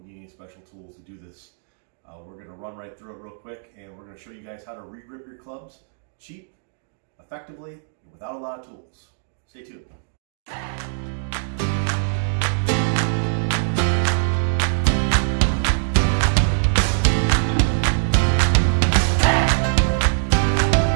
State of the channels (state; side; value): silent; left; digital silence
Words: need any special tools to do this. We're going to run right through it real quick, and we're going to show you guys how to regrip your clubs cheap, effectively, and without a lot of tools. Stay tuned.